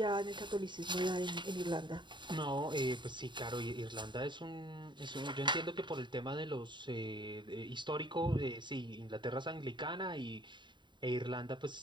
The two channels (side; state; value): left; late; 0.23 ms